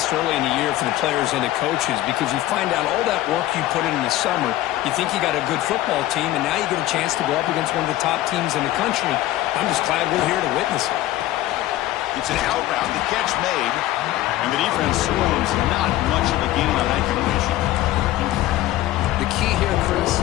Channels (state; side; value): quieter; right; 15.1 dB